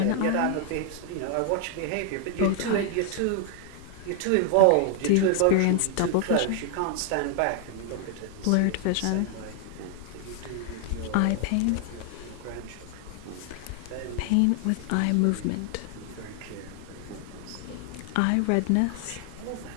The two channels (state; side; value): different; both; correlation 0.00